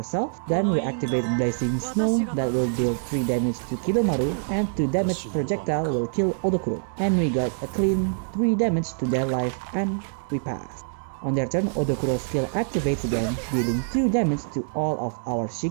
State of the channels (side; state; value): left; silent; digital silence